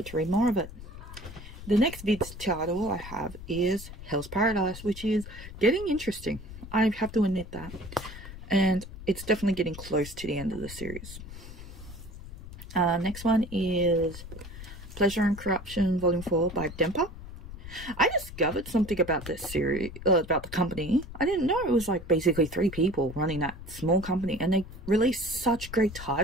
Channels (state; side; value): noise; left; rumble, 13 dB below the sound